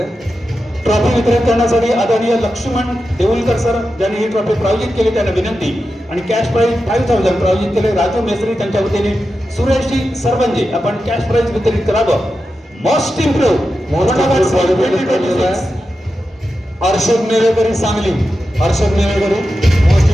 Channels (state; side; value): normal; both; correlation 0.90